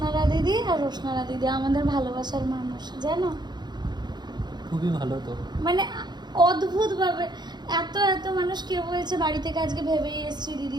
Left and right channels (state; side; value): late; left; 0.21 ms